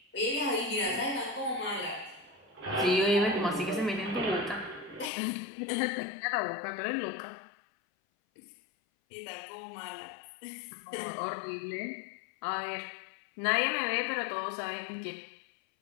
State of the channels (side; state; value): right; drops out; at 5.1 s